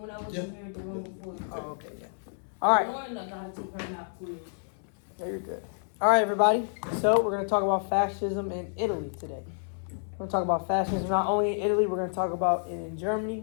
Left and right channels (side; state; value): right; silent; 58 dB below the other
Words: when I was in here the room before. Oh, okay, yeah. All right. Lauren, I gotta take her nap quiz. Yeah, you're good. All right, everybody. So we're gonna talk about fascism in Italy today. We're gonna talk about fascism not only in Italy. We're gonna talk about it in Germany.